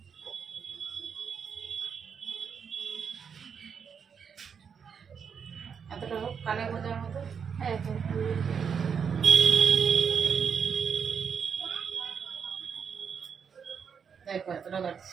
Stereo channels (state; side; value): quieter; left; 6.8 dB